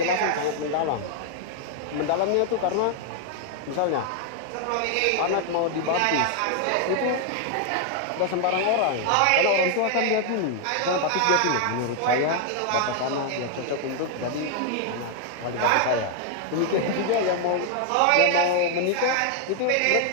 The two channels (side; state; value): both; different; correlation 0.00